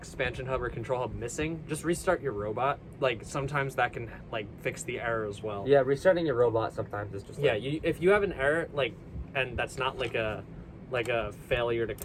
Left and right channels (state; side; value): identical; both; correlation 1.00